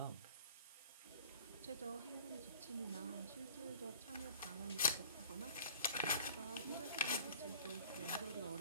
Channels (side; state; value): both; inverted; correlation -0.46